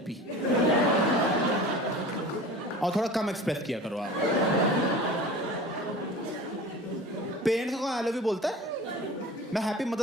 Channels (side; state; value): both; normal; correlation 0.38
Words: और थोड़ा कम एक्सप्रेस किया करो आप। पेरेंट्स को आई लव यू बोलता है? मैं हैप्पी